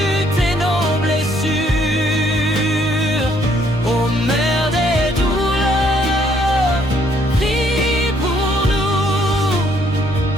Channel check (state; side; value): normal; both; correlation 0.67